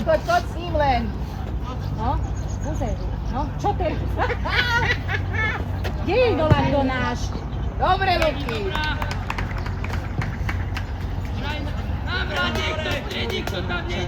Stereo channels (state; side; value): identical; both; correlation 1.00